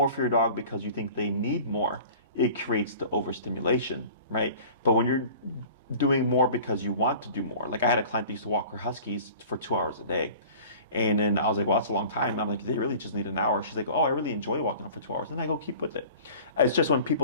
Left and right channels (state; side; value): inverted; both; correlation -0.43